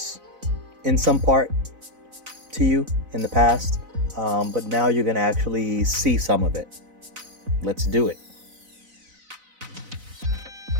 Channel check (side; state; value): left; late; 4.0 ms